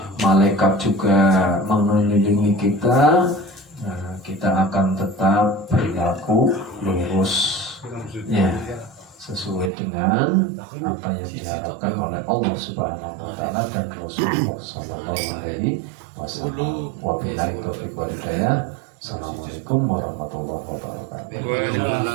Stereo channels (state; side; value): drops out; left; at 9.7 s